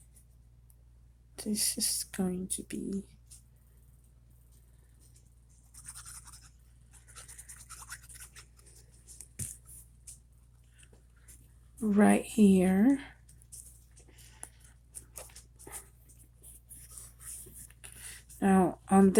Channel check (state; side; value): identical; both; correlation 1.00